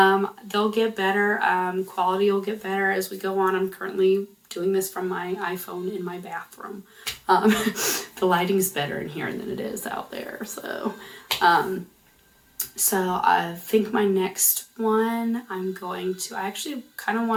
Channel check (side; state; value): both; identical; correlation 1.00